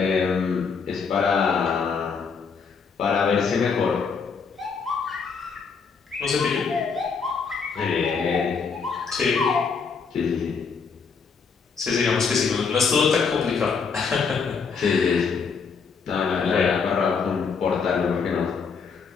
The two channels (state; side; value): quieter; right; 5.5 dB